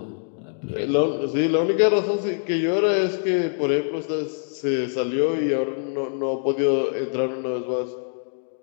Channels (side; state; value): right; silent; digital silence